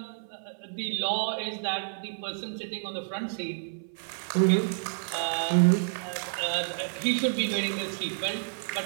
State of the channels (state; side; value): silent; left; 57 dB below the other